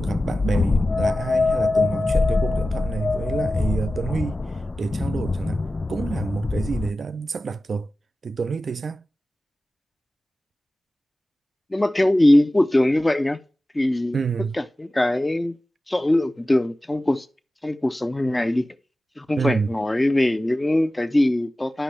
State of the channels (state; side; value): normal; both; correlation 0.95